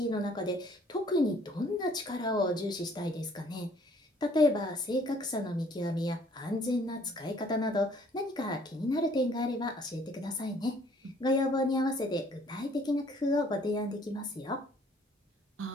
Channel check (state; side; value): normal; both; correlation 0.59